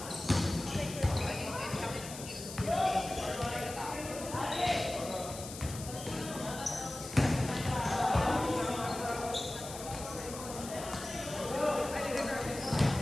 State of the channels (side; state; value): left; noise; hiss, 11 dB below the sound